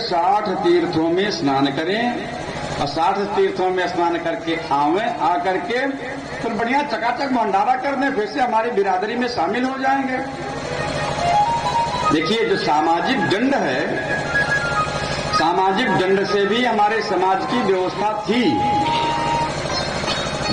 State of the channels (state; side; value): identical; both; correlation 1.00